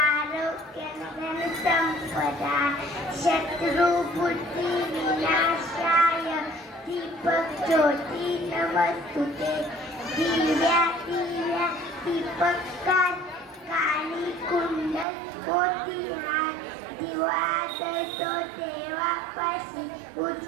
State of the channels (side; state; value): left; drops out; at 15.1 s